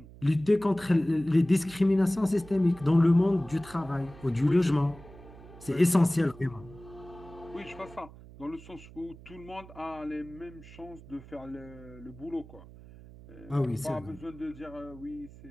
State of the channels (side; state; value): right; noise; hum, 19 dB below the sound